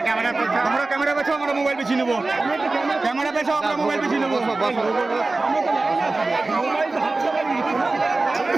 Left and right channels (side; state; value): left; quieter; 3.3 dB